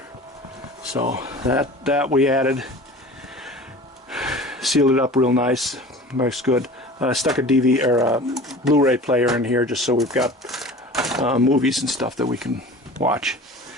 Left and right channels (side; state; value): both; normal; correlation 0.40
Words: So that we added. Sealed it up real nice. Looks good. Stuck a DVD or a Blu-ray player in here just so we've got movies and stuff that we can watch.